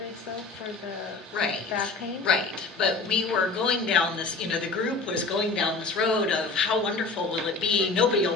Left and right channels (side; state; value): right; quieter; 3.9 dB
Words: though, for the back pain? Right, but we were going down this, the group was going down this road of how wonderful will it be, nobody will